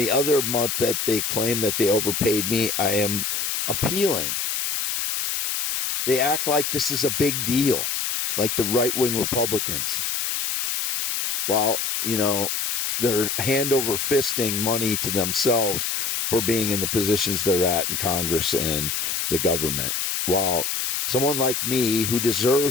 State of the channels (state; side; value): noise; left; hiss, 1 dB below the sound